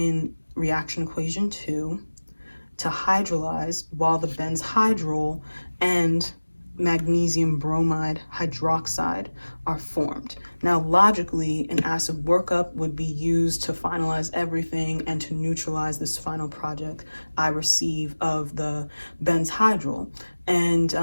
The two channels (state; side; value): inverted; both; correlation -1.00